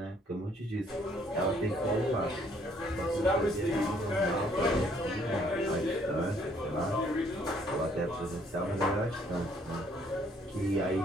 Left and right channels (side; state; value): both; normal; correlation 0.65